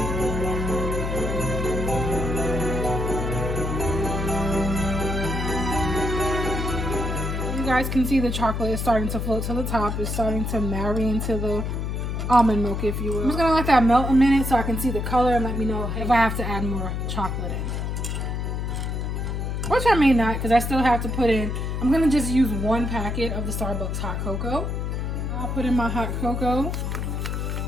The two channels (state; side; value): noise; left; hum, 2 dB below the sound